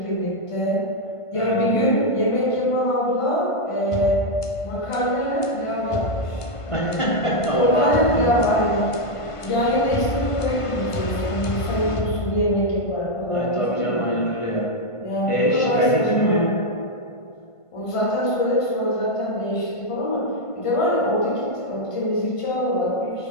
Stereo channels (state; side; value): late; right; 1.5 ms